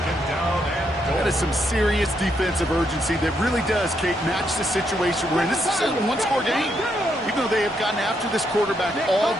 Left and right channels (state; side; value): normal; both; correlation 0.77